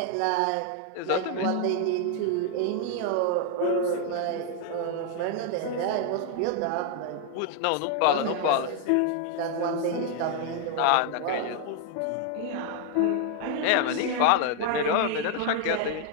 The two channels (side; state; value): both; different; correlation 0.00